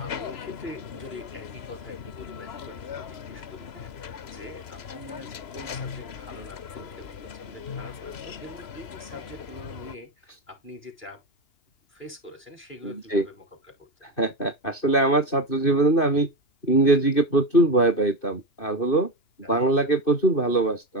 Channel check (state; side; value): late; right; 3.0 ms